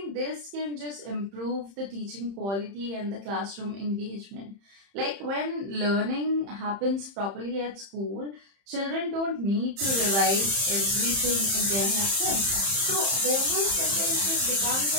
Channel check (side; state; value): left; late; 30 ms